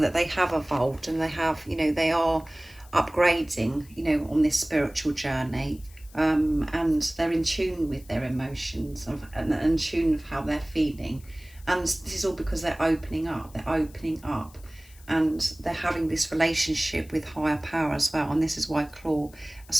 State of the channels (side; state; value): left; noise; hiss, 24 dB below the sound